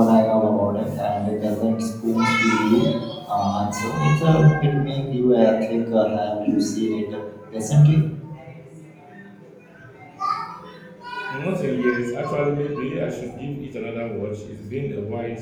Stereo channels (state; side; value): identical; both; correlation 1.00